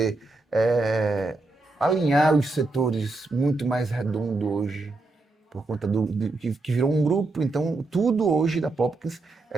alinhar os setores muito mais redondo hoje, por conta que virou um grupo. Então, tudo hoje da Popkins,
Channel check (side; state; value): left; quieter; 3.2 dB